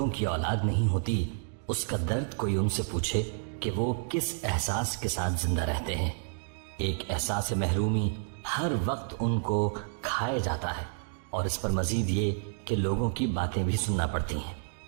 کی اولاد نہیں ہوتی اس کا درد کوئی ان سے پوچھے کہ وہ کس احساس کے ساتھ زندہ رہتے ہیں۔ ایک احساس محرومی ہر وقت ان کو کھائے جاتا ہے، اور اس پر مزید یہ کہ لوگوں کی باتیں بھی سننا پڑتی ہیں۔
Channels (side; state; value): left; silent; digital silence